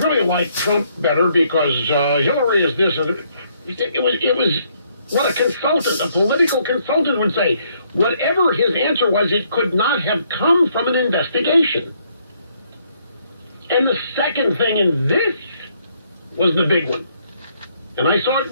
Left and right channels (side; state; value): both; inverted; correlation -0.70